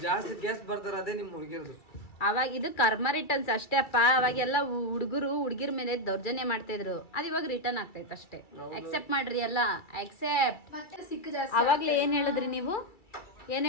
ಜಾಸ್ತಿ ಕೇಸ್ ಬರ್ತಾರೆ, ಅದೇ ನಿಮ್ ಹುಡುಗಿರ್ದು. ಅವಾಗ ಇದು ಕರ್ಮ ರಿಟರ್ನ್ಸ್ ಅಷ್ಟೇ ಅಪ್ಪ. ಅವಾಗೆಲ್ಲ ಹುಡುಗಿರ ಮೇಲೆ ದೌರ್ಜನ್ಯ ಮಾಡ್ತಾ ಇದ್ರು. ಅದು ಇವಾಗ ರಿಟರ್ನ್ ಆಗ್ತೈತೆ ಅಷ್ಟೇ. ಅಕ್ಸೆಪ್ಟ್ ಮಾಡ್ರಿ ಎಲ್ಲ, ಅಕ್ಸೆಪ್ಟ್. ಅವಾಗ್ಲೇ ಏನ್ ಹೇಳಿದ್ರಿ ನೀವು? ಏನ್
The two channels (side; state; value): right; late; 2.3 ms